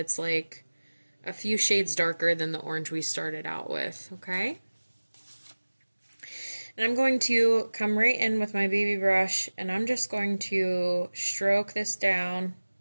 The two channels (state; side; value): inverted; both; correlation -1.00